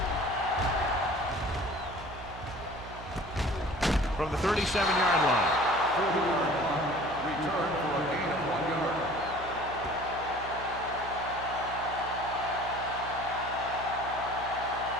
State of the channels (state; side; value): noise; right; hum, 14 dB below the sound